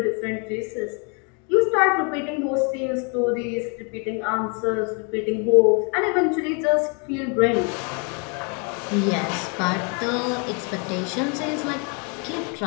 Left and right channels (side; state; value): right; quieter; 34.8 dB